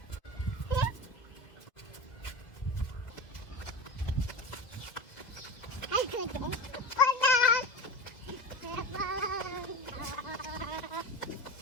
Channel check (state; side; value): late; right; 2.2 ms